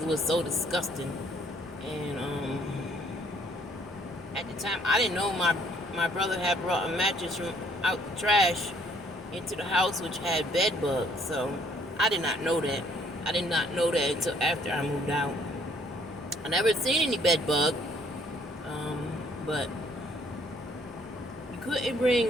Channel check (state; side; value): normal; both; correlation 0.63